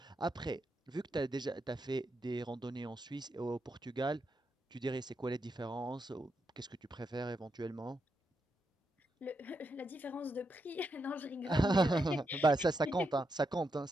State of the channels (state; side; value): normal; both; correlation 0.83